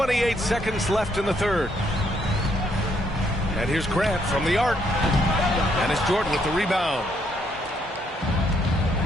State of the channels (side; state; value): both; normal; correlation 0.72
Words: seconds left in the 3rd. And here's Grant from the arc. And it's Jordan with the rebound.